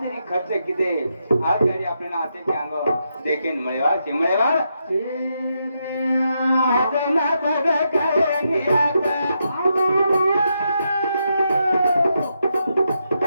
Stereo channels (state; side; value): inverted; both; correlation -0.82